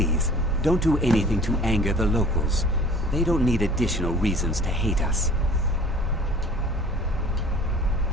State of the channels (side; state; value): both; normal; correlation 0.48